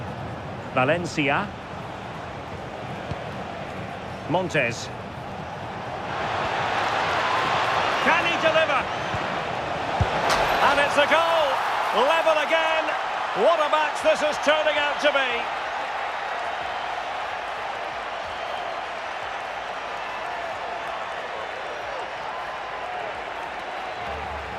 Valencia. Montes. Can he deliver? And it's a goal! Level again! What a match this is turning out to be!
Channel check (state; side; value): identical; both; correlation 1.00